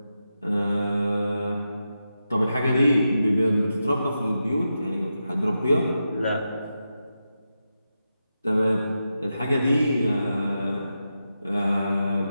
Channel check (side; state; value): both; inverted; correlation -0.88